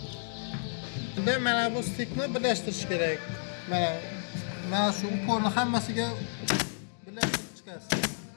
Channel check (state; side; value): silent; right; digital silence